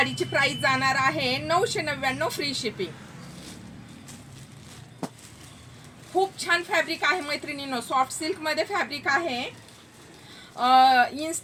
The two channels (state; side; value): identical; both; correlation 1.00